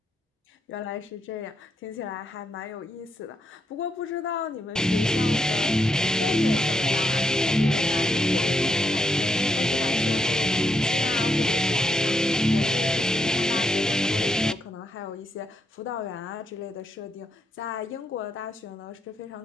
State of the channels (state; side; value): normal; both; correlation 0.80